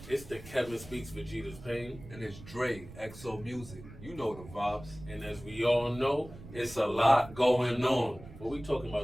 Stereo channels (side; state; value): right; noise; rumble, 16 dB below the sound